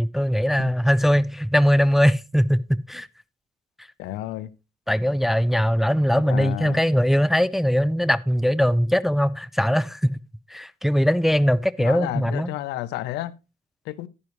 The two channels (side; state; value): both; normal; correlation 0.97